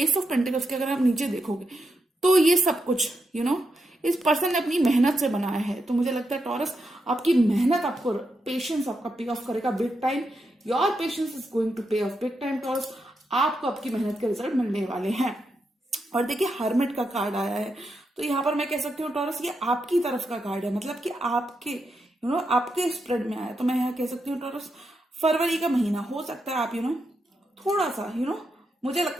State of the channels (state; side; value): normal; both; correlation 0.84